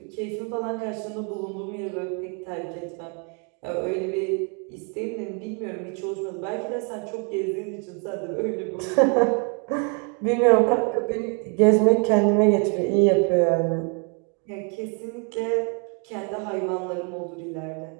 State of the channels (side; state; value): left; quieter; 37.0 dB